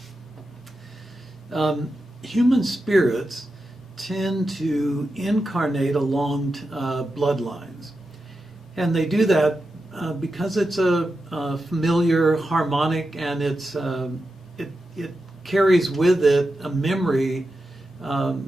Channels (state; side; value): normal; both; correlation 0.90